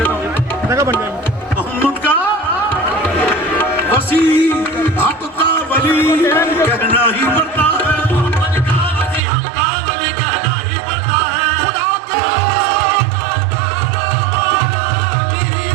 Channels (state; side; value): drops out; left; at 9.2 s